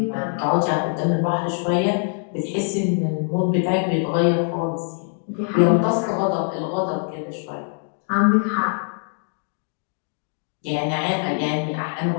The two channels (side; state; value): right; silent; 56 dB below the other